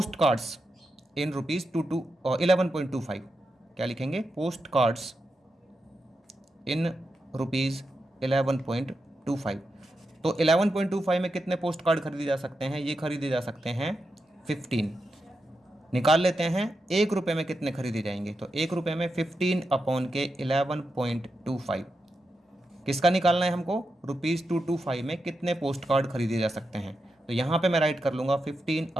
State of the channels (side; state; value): both; normal; correlation 0.88